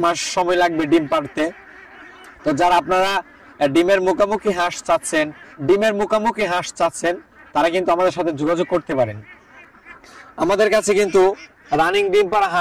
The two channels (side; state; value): both; identical; correlation 1.00